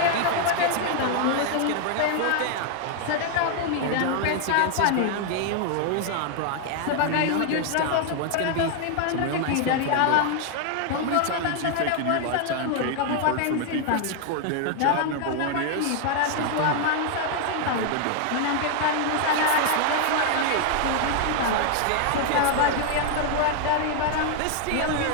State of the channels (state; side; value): different; both; correlation 0.00